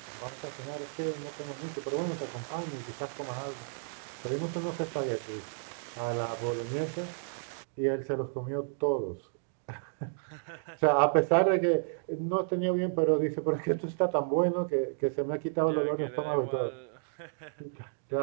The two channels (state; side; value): silent; left; digital silence